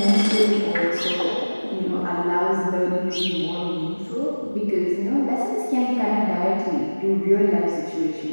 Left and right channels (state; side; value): inverted; both; correlation -1.00